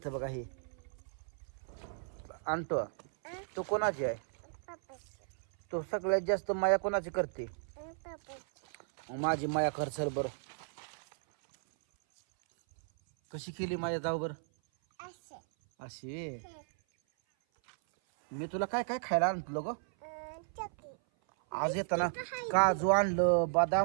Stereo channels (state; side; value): silent; left; 55 dB below the other